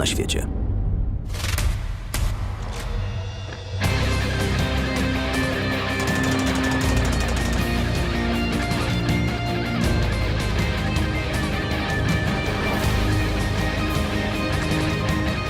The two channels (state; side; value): identical; both; correlation 1.00